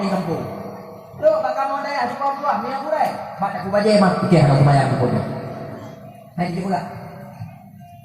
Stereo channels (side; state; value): both; identical; correlation 1.00